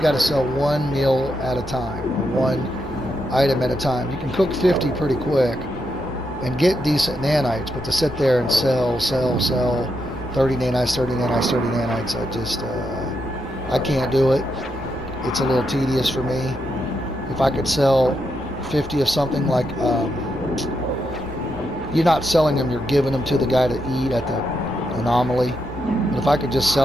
to sell one meal at a time, or one item at a time. You can cook 50 pretty quick and get decent nanites, but to sit there and sell 30 nanites, 30 nanites, 30 nanites, I can't do it. It's a little tedious for me. If I could sell 50 of something, like you're not selling them, you're giving them to the guy to eat at the anomaly. But if I could just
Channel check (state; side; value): normal; both; correlation 0.82